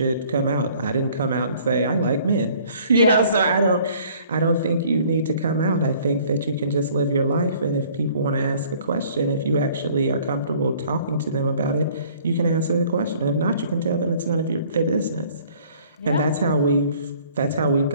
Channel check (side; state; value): both; inverted; correlation -0.56